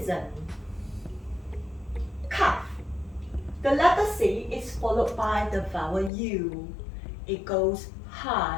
Cuff. The letter C is followed by the vowel U. It goes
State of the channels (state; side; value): drops out; right; at 6.1 s